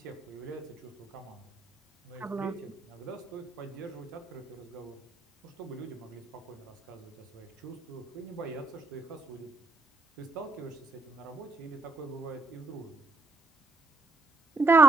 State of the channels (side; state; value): left; quieter; 3.4 dB